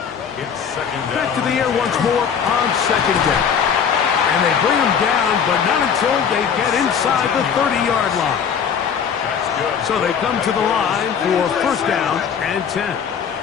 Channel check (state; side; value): quieter; right; 7.2 dB